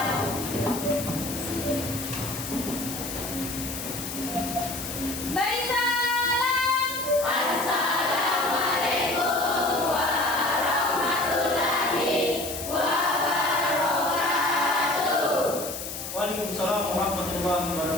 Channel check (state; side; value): noise; left; hiss, 7 dB below the sound